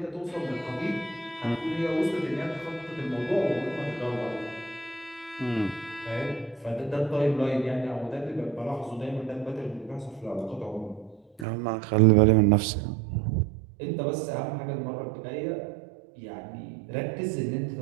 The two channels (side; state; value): left; drops out; at 11.5 s